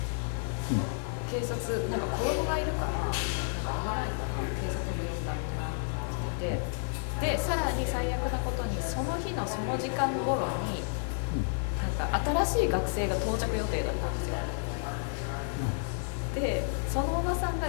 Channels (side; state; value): right; silent; 57 dB below the other